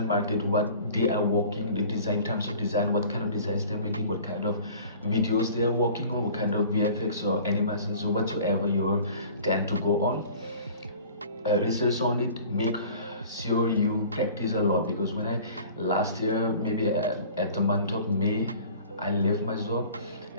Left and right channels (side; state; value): both; inverted; correlation -0.46